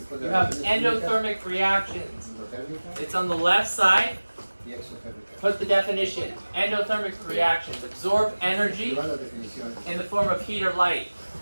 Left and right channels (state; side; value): inverted; both; correlation -1.00